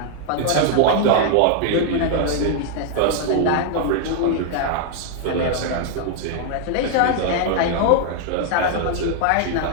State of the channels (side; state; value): both; different; correlation 0.00